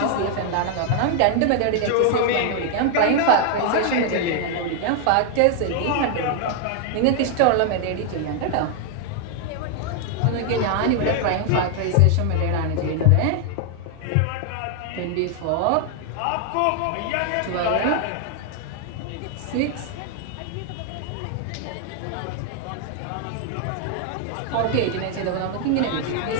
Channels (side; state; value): both; different; correlation 0.00